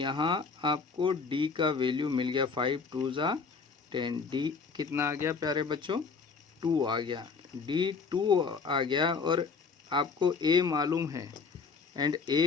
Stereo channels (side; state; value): right; quieter; 5.0 dB